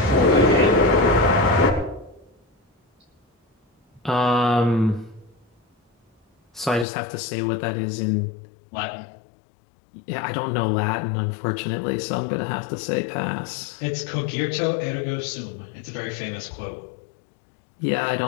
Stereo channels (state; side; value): drops out; right; at 6.9 s